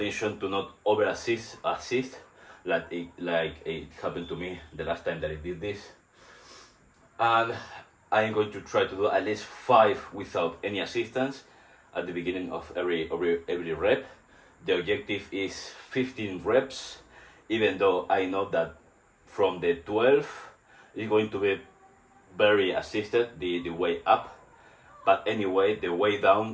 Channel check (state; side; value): identical; both; correlation 1.00